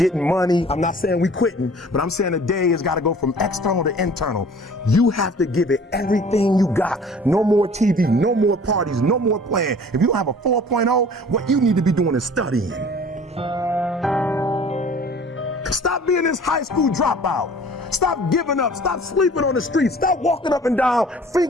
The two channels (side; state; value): both; normal; correlation 0.48